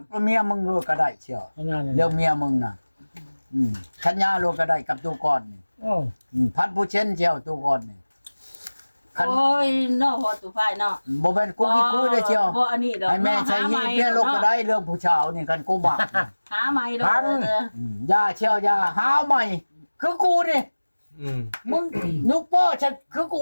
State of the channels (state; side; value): inverted; both; correlation -1.00